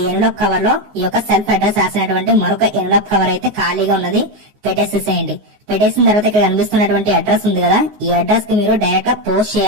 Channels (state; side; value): late; left; 14 ms